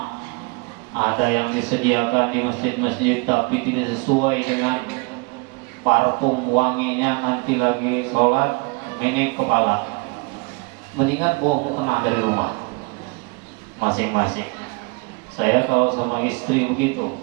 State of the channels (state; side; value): quieter; left; 29.8 dB